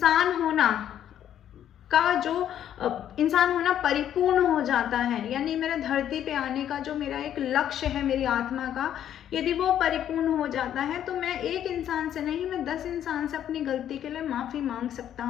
होना का जो इंसान होना परिपूर्ण हो जाता है, यानी मेरा धरती पे आने का जो मेरा एक लक्ष्य है मेरी आत्मा का, यदि वो परिपूर्ण हो जाता है तो मैं एक इंसान से नहीं, मैं 10 इंसान से अपनी गलती के लिए माफ़ी मांग सकता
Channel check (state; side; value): quieter; right; 10.4 dB